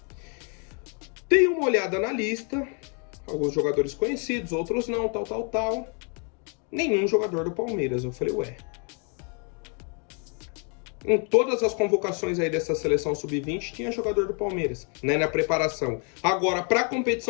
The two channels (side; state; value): right; quieter; 38.9 dB